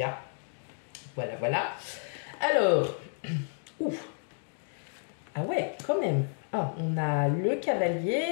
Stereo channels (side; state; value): right; silent; 57 dB below the other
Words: a. Voilà. Alors, ouf. Ah ouais, quand même. Ah, on a le